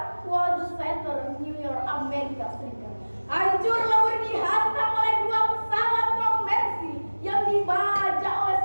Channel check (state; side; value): inverted; both; correlation -1.00